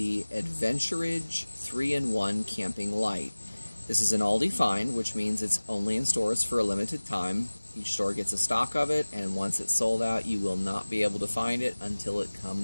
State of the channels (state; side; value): inverted; both; correlation -1.00